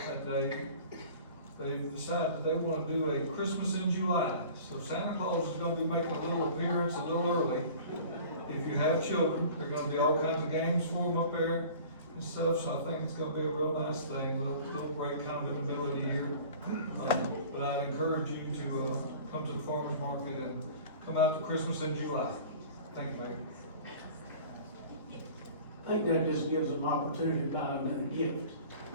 day, they've decided that they want to do a Christmas in July. So Santa Claus is going to be making a little appearance a little early. If you have children, there are going to be all kinds of games for them up there and stuff, so I think it's going to be a real nice thing. Little break kind of in the middle of the year. But I'd encourage you to come to the farmer's market and come out to Christmas in July. Thank you, Mayor. I think that just gives them opportunity to buy another gift.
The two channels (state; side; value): inverted; both; correlation -0.44